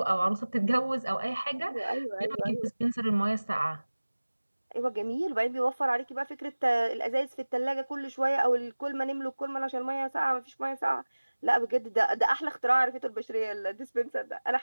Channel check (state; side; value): inverted; both; correlation -1.00